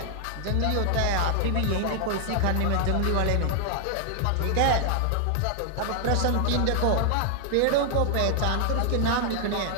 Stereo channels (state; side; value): different; both; correlation 0.00